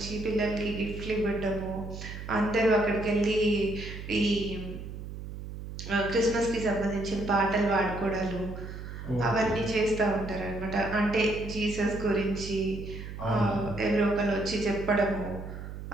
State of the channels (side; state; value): right; noise; hum, 9 dB below the sound